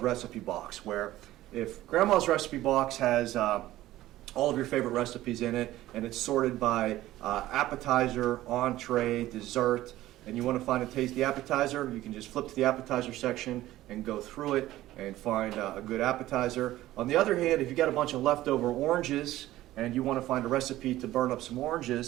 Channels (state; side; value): quieter; left; 15.4 dB